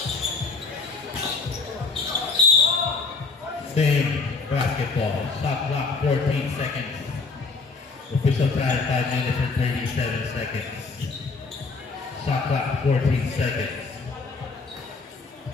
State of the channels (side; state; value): right; quieter; 4.2 dB